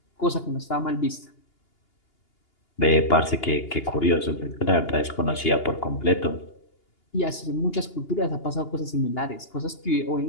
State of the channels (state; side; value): late; right; 2.8 ms